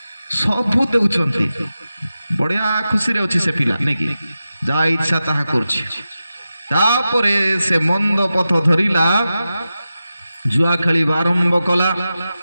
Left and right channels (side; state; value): both; inverted; correlation -0.93